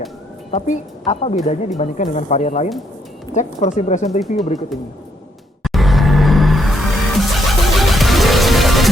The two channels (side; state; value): both; normal; correlation 0.74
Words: Tapi apa bedanya dibandingkan dengan varian lain? Cek first impression review berikut ini.